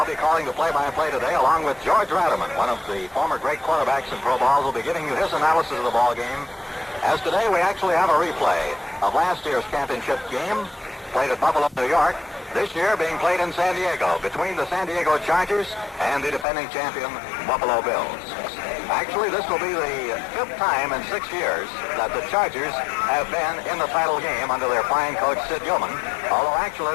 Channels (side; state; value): right; drops out; at 16.4 s